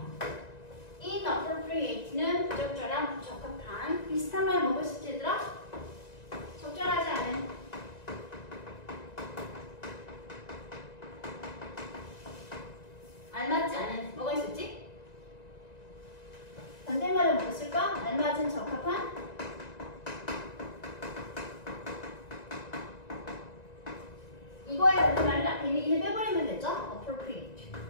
inappropriate는 부적절한, 부적합한. 비슷한 말 뭐가 있을지 얘들아? 적절하지 않은. 알맞지 않은. 뭐가 있었지? 반대말은 뭐가 있을까? 알맞은, 적합한. 이거에 반대말은 앞에 있는 이를 빼버리면 되죠? appropriate.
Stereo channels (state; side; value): late; right; 1.9 ms